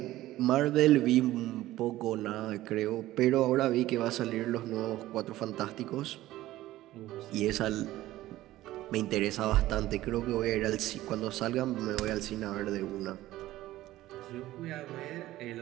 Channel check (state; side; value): quieter; left; 15.7 dB